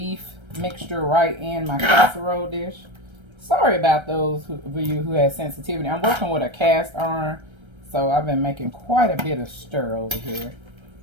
mixture right in my casserole dish. Sorry about those of you who have sensitivity. I'm working with a cast iron, so I've been making quite a bit of stir over here.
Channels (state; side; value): late; left; 1.3 ms